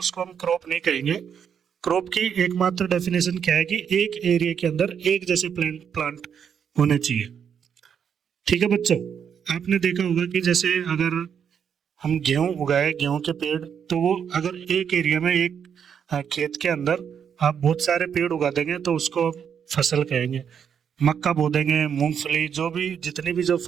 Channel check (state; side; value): quieter; left; 7.7 dB